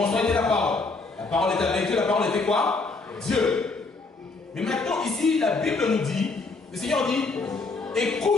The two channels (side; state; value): right; quieter; 3.8 dB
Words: était la parole. La parole était avec Dieu, la parole était quoi? Dieu. Mais maintenant ici, la Bible nous dit, le Seigneur dit,